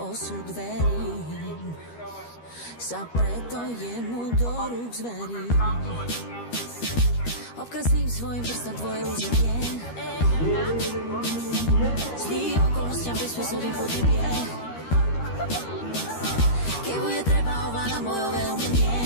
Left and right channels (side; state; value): right; late; 13 ms